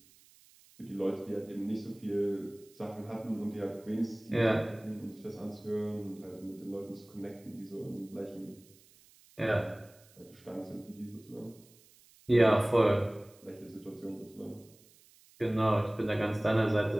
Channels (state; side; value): noise; right; hiss, 27 dB below the sound